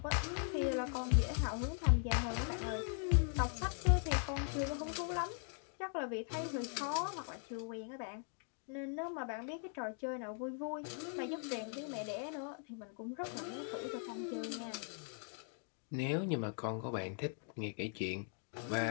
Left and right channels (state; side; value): silent; right; 51 dB below the other